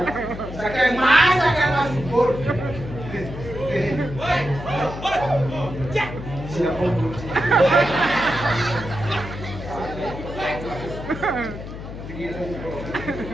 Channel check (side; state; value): left; noise; hum, 10 dB below the sound